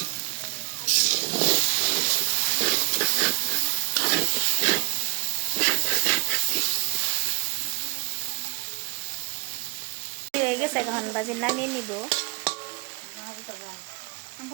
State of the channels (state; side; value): quieter; left; 28.7 dB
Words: হয়ে গেছে, এখন ভাজি নামিয়ে নিব।